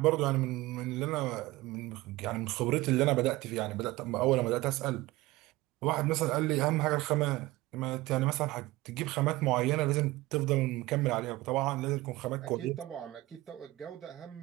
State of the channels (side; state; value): left; quieter; 19.1 dB